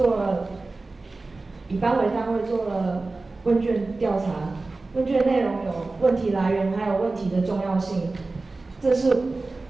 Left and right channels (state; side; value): quieter; left; 3.4 dB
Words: 以班为单位做了问卷调查，问卷内容有问题来源，还有问题的重要性。